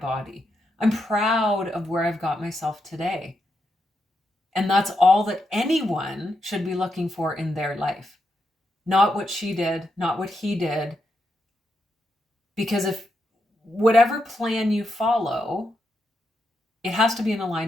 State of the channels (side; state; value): both; normal; correlation 0.83